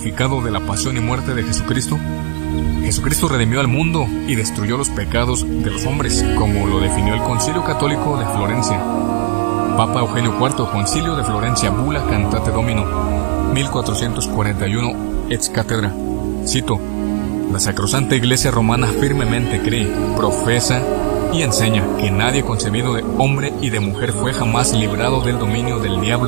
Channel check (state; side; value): silent; left; digital silence